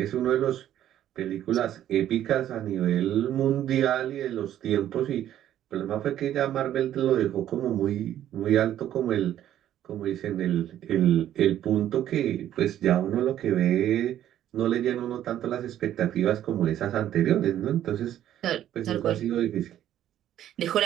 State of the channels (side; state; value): left; quieter; 11.6 dB